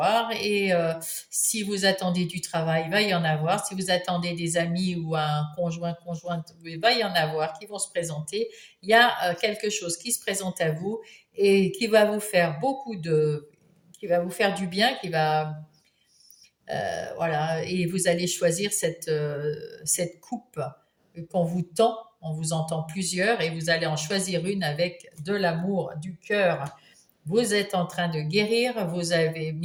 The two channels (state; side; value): identical; both; correlation 1.00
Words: Et si vous attendez du travail, va y en avoir. Si vous attendez des amis ou un conjoint, conjointe, va y en avoir qui vont se présenter. Il y a quelque chose qui se présente à vous et qui va vous faire qui va vous faire du bien, voilà, et vous allez choisir cette coupe qu'on vous tend. On vous entend plusieurs et vous allez en choisir une avec de l'amour, du cœur. Vous êtes en train de guérir, vous avez